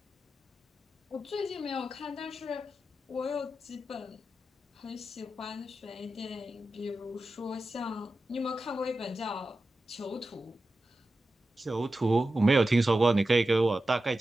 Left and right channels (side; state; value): both; normal; correlation 0.92